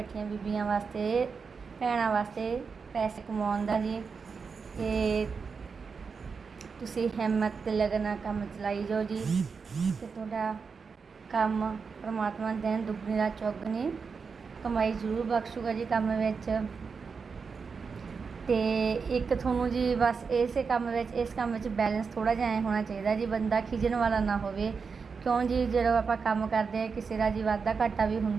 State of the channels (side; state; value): left; quieter; 5.3 dB